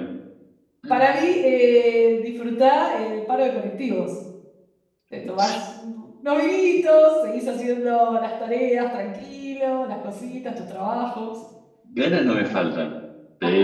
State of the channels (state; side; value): identical; both; correlation 1.00